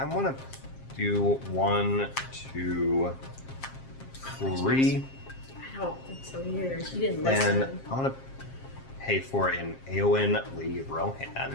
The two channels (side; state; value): right; late; 7.5 ms